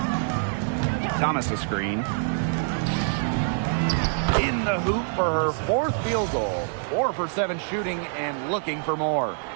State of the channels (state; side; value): silent; left; 61 dB below the other